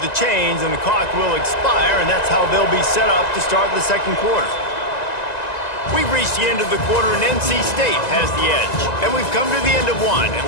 chains, and the clock will expire, and that's how they'll be set up to start the second quarter. We've reached the end of the quarter, and NC State has the edge. And we've come to the end of one, and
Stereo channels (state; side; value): late; right; 1.9 ms